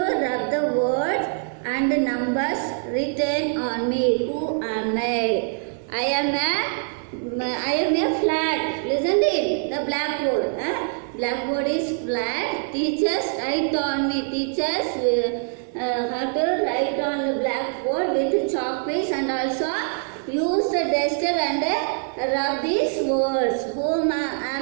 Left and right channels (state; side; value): silent; left; 63 dB below the other